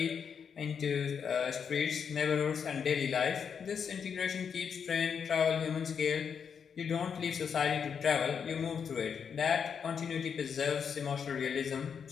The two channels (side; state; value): right; quieter; 6.9 dB